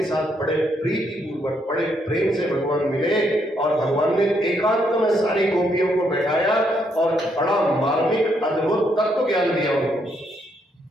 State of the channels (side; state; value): both; normal; correlation 0.74